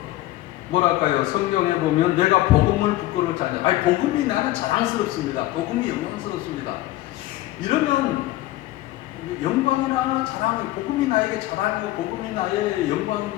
뭐랄까요? 성경에 보면 내가 복음을 부끄럽지 않냐. 아니, 복음이 나는 자랑스럽습니다. 복음이 영광스럽습니다. 이러면 영광이나 자랑이, 복음이 나에게 자랑이고 복음이 나의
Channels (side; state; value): right; quieter; 16.2 dB